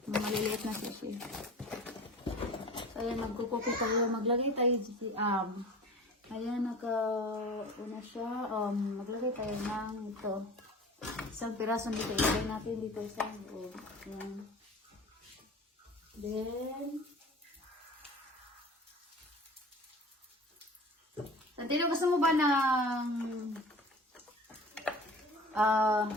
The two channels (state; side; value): normal; both; correlation 0.40